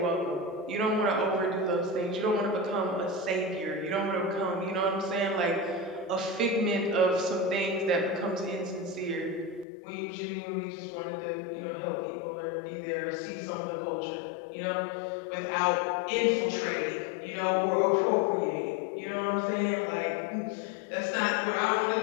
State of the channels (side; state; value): right; drops out; at 9.7 s